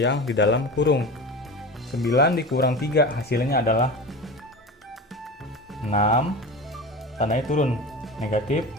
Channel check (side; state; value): both; normal; correlation 0.30